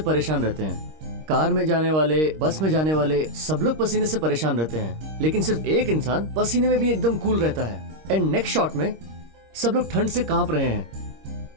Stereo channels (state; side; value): late; left; 26 ms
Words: परेशान रहते हैं। कार में जाने वाले, बस में जाने वाले, सब लोग पसीने से परेशान रहते हैं, लेकिन सिर्फ एक इंसान पसीने में भी एकदम कूल रहता है। एंड नेक्स्ट शॉट में सब लोग ठंड से कांप रहे